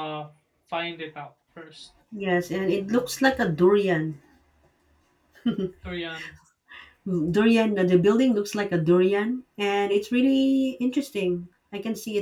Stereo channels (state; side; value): identical; both; correlation 1.00